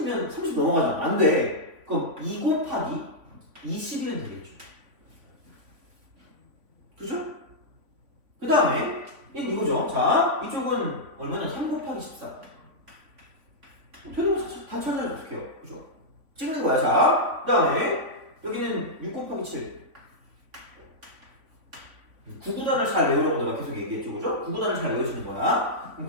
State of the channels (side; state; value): left; late; 3.5 ms